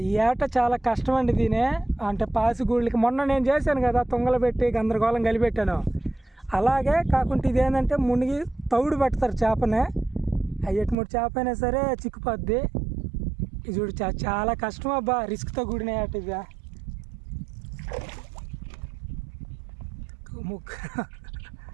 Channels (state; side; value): drops out; left; at 11.0 s